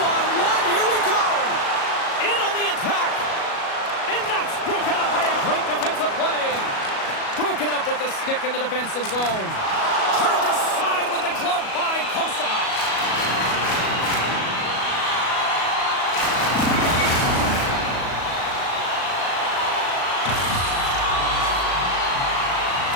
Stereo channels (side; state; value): right; late; 37 ms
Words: here we go! In on the attack! And that's broken up by a great defensive play! Broken up with the stick in the defensive zone. Turned aside with the glove by Kosa.